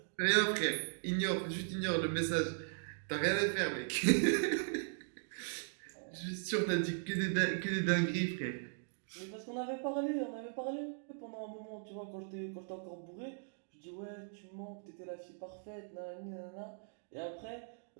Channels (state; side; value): silent; left; digital silence